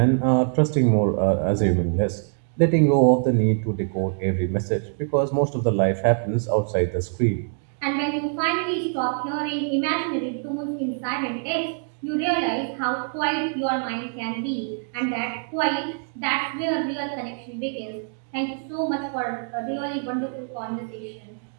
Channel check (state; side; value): silent; left; 62 dB below the other